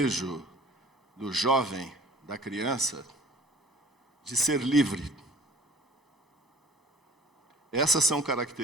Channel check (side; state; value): both; normal; correlation 0.48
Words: do jovem, da criança, de ser livre. Essas são